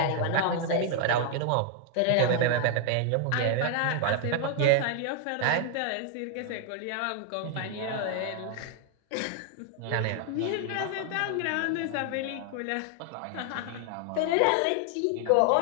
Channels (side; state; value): both; different; correlation 0.00